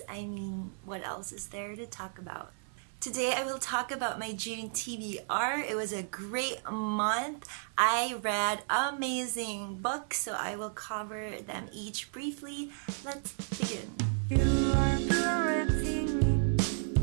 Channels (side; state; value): left; silent; 56 dB below the other